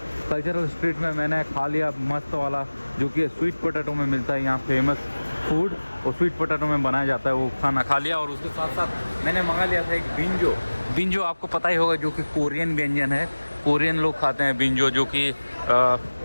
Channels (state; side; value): inverted; both; correlation -1.00